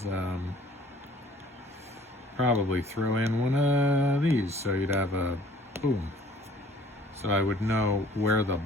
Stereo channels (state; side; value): normal; both; correlation 0.53